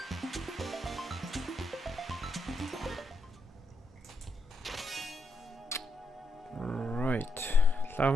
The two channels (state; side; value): normal; both; correlation 0.79